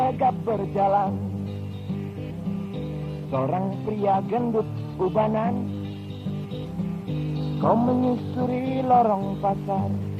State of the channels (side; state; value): both; identical; correlation 1.00